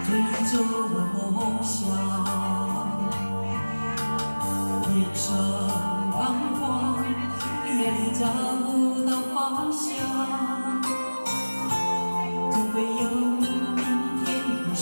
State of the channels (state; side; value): inverted; both; correlation -1.00